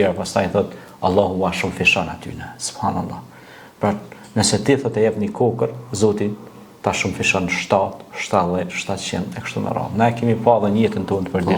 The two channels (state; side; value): identical; both; correlation 1.00